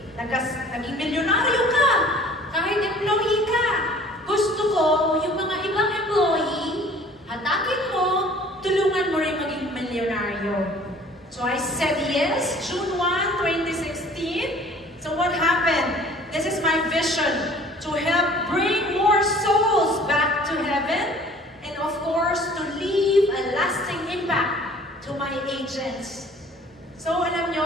naging milyonaryo ka, kahit employee ka. Gusto ko, yung mga ibang employee, hatakin mo, tulungan mo rin maging milyonaryo. So I said yes, June 1, 2016. So what happened? This is my vision, to help bring more souls back to heaven, and of course, to leave a lasting impact to my agents. So alam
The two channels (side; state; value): both; normal; correlation 0.50